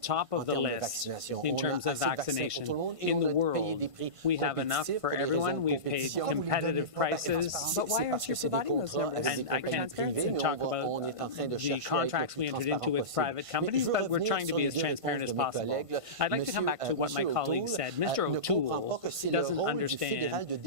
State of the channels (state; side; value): late; left; 1.5 ms